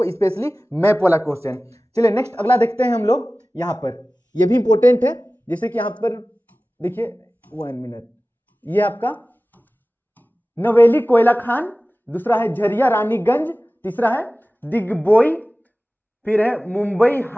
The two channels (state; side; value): normal; both; correlation 0.97